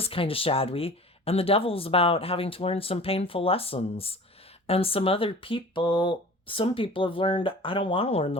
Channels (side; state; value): both; normal; correlation 0.42